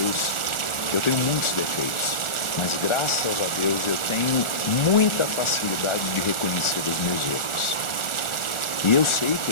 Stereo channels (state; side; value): late; right; 1.4 ms